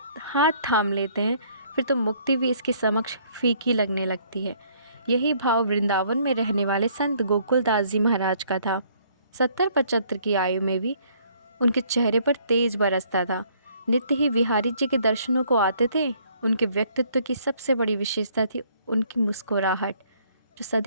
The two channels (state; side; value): inverted; both; correlation -0.63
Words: हाथ थाम लेते हैं फिर तो मुक्ति भी इसके समक्ष फीकी लगने लगती है। यही भाव वृंदावन में रहने वाले संत गोकुलदास जी महाराज का था। 70-75 की आयु में भी उनके चेहरे पर तेज बरसता था। नित्य ही बिहारी जी के दर्शनों को आते थे। उनके व्यक्तित्व की सबसे बड़ी विशेषता थी उनकी मुस्कुराहट, जो